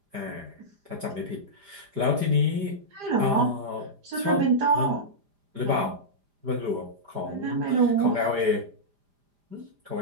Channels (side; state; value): left; late; 5.0 ms